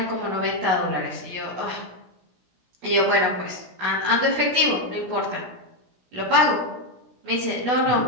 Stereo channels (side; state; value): left; late; 17 ms